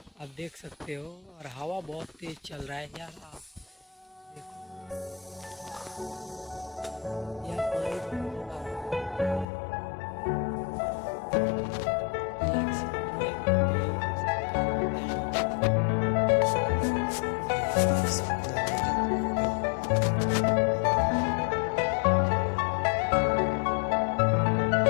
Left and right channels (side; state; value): right; drops out; at 9.5 s